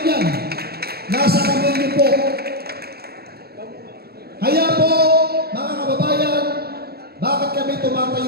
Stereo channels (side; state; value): left; late; 0.46 ms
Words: yan. Nasa kamay niyo po. Kaya po, mga kababayan, bakit kami